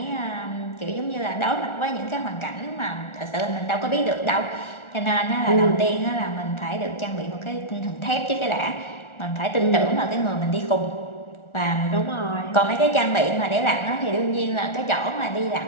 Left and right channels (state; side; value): late; right; 1.4 ms